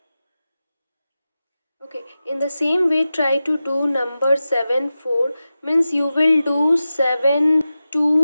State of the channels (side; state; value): both; inverted; correlation -0.94